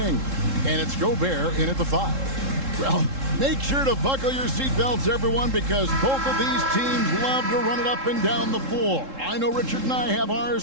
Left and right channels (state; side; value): late; left; 3.7 ms